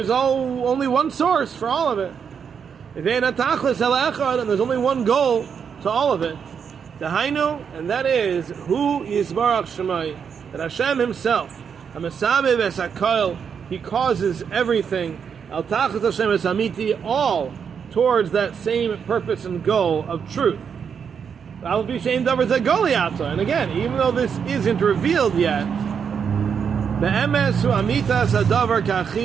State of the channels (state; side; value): quieter; left; 6.9 dB